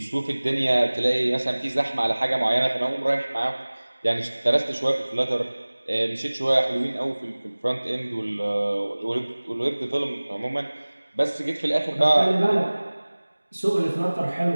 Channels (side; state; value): both; inverted; correlation -1.00